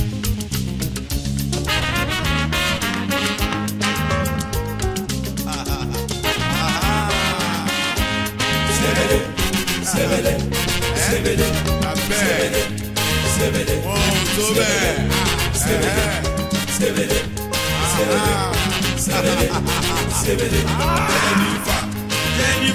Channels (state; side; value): identical; both; correlation 1.00